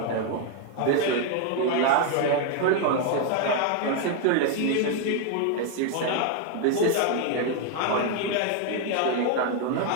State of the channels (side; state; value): both; different; correlation 0.01